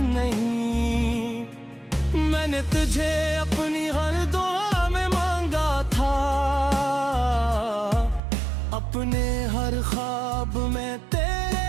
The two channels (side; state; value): left; drops out; at 8.2 s